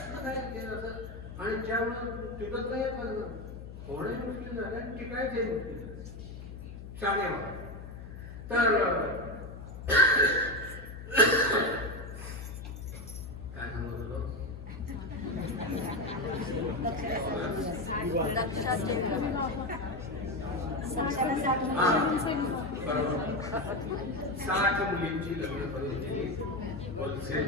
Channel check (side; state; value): left; noise; hum, 11 dB below the sound